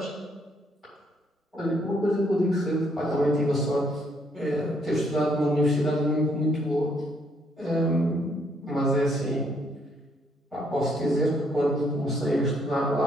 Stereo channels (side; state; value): both; normal; correlation 0.70